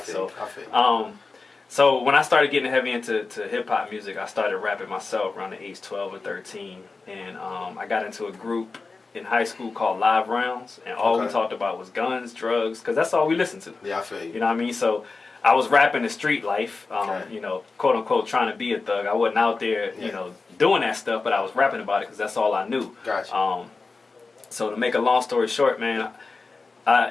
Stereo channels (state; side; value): quieter; right; 4.0 dB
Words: So when I started getting heavy into hip-hop music, I started rapping myself around the age 12 or 13. And I got into a group in high school called Live Rounds, and all we talked about was guns, drugs, because that's all we listened to. Yeah, I feel you. You know what I mean? So I was rapping the street life, you know, quote unquote, trying to be a thug. I wasn't out there, you know, doing that stuff, but I was rapping about it because that's all I knew. Gotcha. So to make a long story short, man,